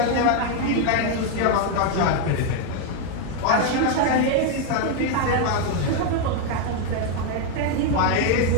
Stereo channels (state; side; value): different; both; correlation 0.01